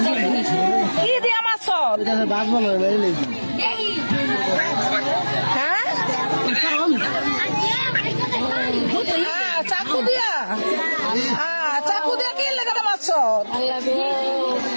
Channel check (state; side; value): inverted; both; correlation -1.00